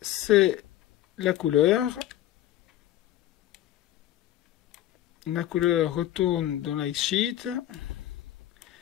c'est la couleur. La couleur retourne dans l'X-Sheet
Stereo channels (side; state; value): right; quieter; 13.3 dB